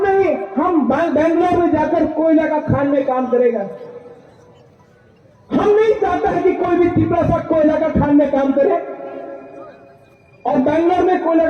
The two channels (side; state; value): both; identical; correlation 1.00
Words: ही, हम बेंगलोर में जाकर कोयला का खान में काम करेगा। हम नहीं चाहते हैं कि कोई भी तिपरासा कोयला का खान में काम करे, और बेंगलोर में कोयला